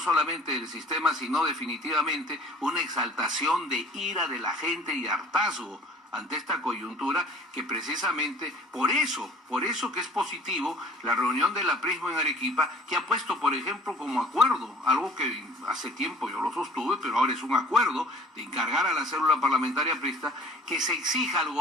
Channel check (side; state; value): both; normal; correlation 0.49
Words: el sistema, sino definitivamente una exaltación de ira de la gente y hartazgo ante esta coyuntura, que precisamente por eso que es positivo la reunión de la Prisma en Arequipa, que ha puesto, por ejemplo, como acuerdo, algo que hace tiempo yo lo sostuve, pero ahora es un acuerdo de encargar a la célula parlamentaria prista que se exija al